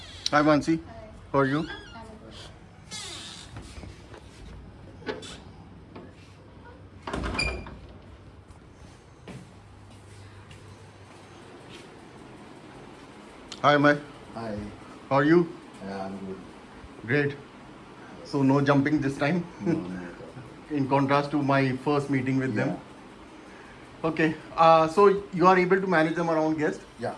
Hi Mansi, how are you? Hi Amey, Hi. how are you? Yeah, I'm good. Great. So no jumping this time, No, no. in contrast to my first meeting with them. Yeah. Okay. So you are able to manage them around guests. Yeah.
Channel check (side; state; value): both; identical; correlation 1.00